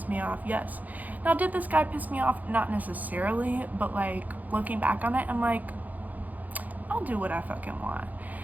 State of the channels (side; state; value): left; late; 0.080 ms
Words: me off? Yes. Now, did this guy piss me off? Not necessarily, but, like, looking back on it, I'm like, I'll do what I fucking want.